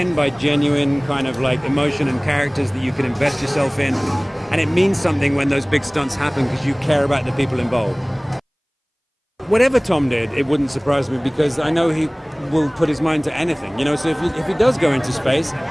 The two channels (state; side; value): identical; both; correlation 1.00